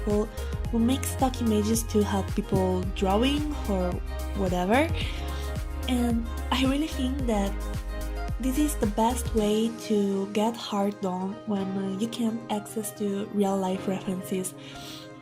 who make stock images to help people drawing or whatever. And I really think that this is the best way to get art done when you can access to real life references,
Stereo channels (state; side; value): identical; both; correlation 1.00